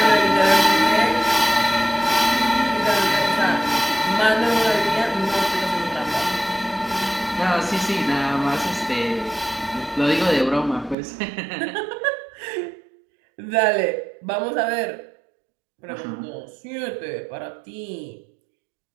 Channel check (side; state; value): left; drops out; at 11.0 s